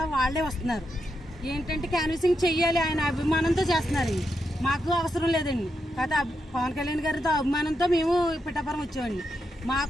వాళ్ళే వస్తున్నారు. ఏంటంటే క్యాన్వసింగ్ చెయ్యాలి, ఆయన అభిమానంతో చేస్తున్నారు. మాకు అవసరం లేదండి. కాకపోతే పవన్ కళ్యాణ్ గారితో అభిమానంతో మేము పిఠాపురం వచ్చామండి.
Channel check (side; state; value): both; normal; correlation 0.84